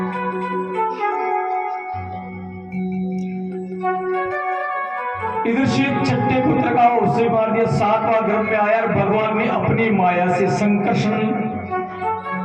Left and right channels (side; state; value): both; identical; correlation 1.00